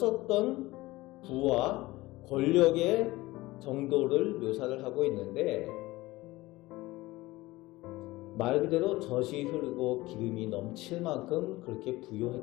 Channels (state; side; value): quieter; right; 19.3 dB